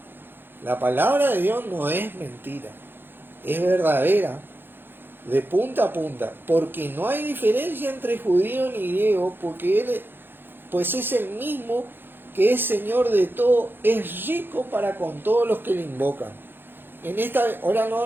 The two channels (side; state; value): left; late; 0.10 ms